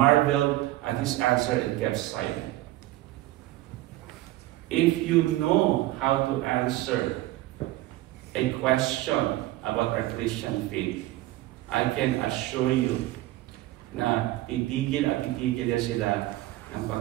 at his answer and kept silent. If you know how to answer a question about our Christian faith, I can assure you na titigil at titigil yan sila ng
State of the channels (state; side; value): quieter; left; 16.7 dB